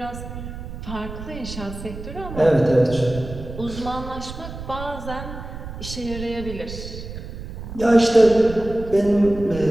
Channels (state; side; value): noise; right; rumble, 10 dB below the sound